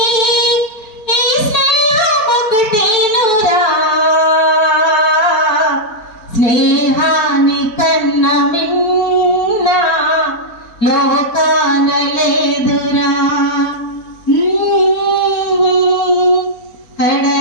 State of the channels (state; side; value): late; right; 4.5 ms